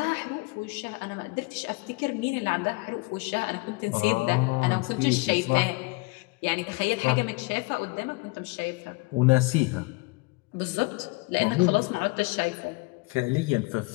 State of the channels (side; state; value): right; quieter; 26.1 dB